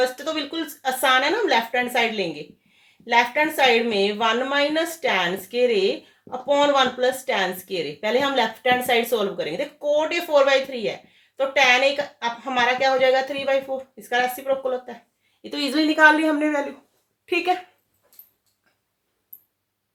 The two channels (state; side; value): identical; both; correlation 1.00